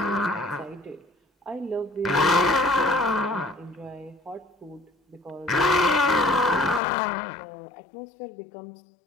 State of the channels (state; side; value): drops out; right; at 6.8 s